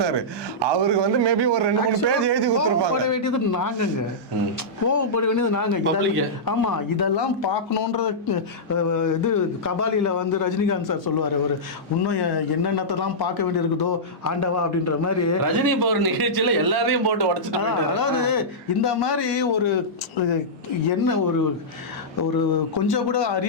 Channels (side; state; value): both; normal; correlation -0.13